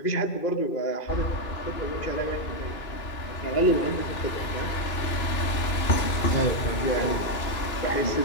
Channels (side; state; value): right; late; 2.9 ms